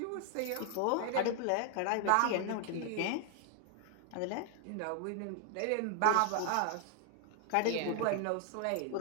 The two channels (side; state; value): both; different; correlation 0.00